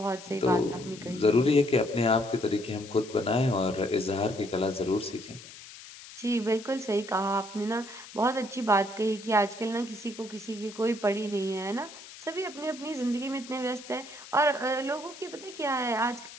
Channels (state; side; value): noise; left; hiss, 16 dB below the sound